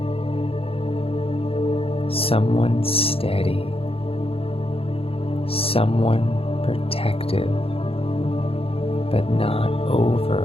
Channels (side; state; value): right; late; 0.27 ms